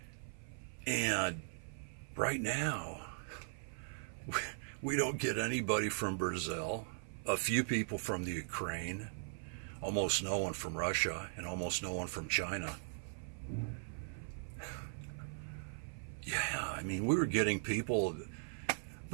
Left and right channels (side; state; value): left; silent; 52 dB below the other